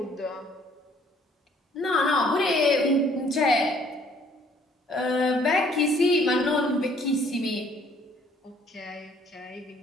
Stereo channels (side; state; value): both; normal; correlation 0.60